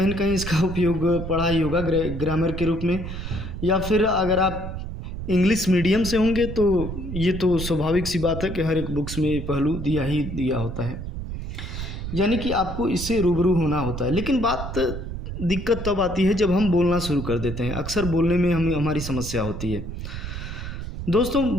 न कहीं इसका उपयोग पढ़ा ही होगा ग्रामर के रूप में, या फिर अगर आप इंग्लिश मीडियम से होंगे तो ये तो स्वाभाविक सी बात है कि हर एक बुक्स में ये पहलू दिया ही दिया होता है, यानी कि आपको इससे रूबरू होना होता है। लेकिन दिक्कत तब आती है जब हम बोलना शुरू कर देते हैं। अक्सर बोलने में हमारी समस्या होती है। दोस्तों,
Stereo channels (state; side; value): noise; right; rumble, 7 dB below the sound